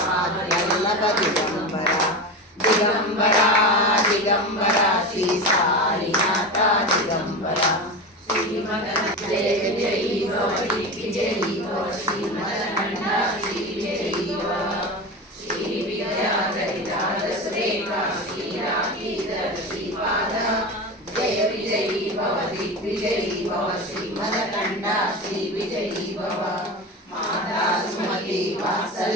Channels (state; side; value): normal; both; correlation 0.24